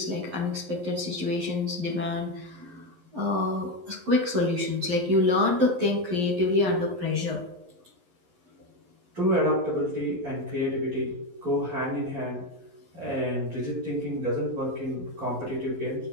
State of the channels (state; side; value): late; left; 11 ms